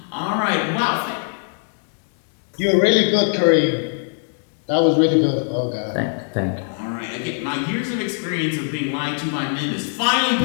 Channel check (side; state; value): right; silent; digital silence